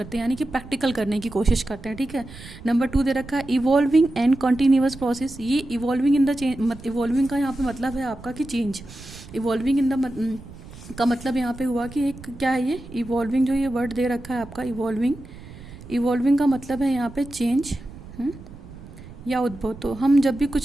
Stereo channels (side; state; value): right; noise; rumble, 16 dB below the sound